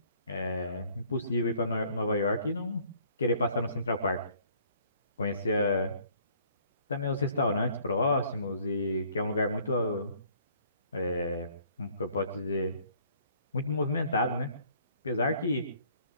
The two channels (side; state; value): both; inverted; correlation -0.60